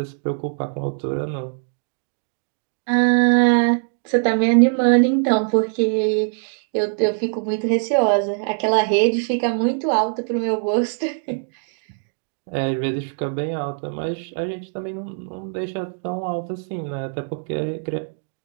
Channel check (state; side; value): silent; left; digital silence